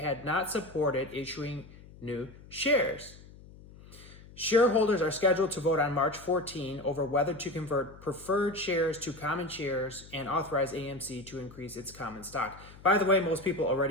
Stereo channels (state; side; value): noise; left; hum, 20 dB below the sound